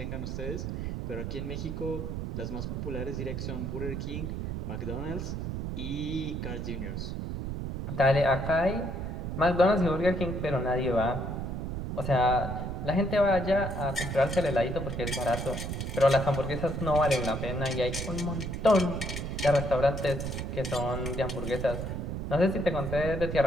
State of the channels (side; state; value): right; noise; rumble, 4 dB below the sound